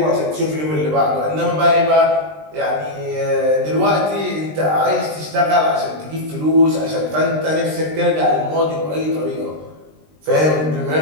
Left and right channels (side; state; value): left; late; 20 ms